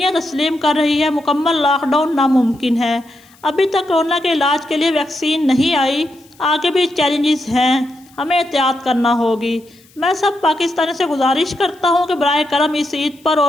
तस्लीम कर रही है मुकम्मल लॉकडाउन नामुमकिन है। अभी तक कोरोना के इलाज के लिए वैक्सीन नहीं आई, आगे भी चैलेंजेस हैं, हमें एहतियात करना होगी। मैं सब पाकिस्तानी से गुजारिश करता हूँ कि बराए करम इस ईद पर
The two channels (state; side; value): noise; left; hiss, 29 dB below the sound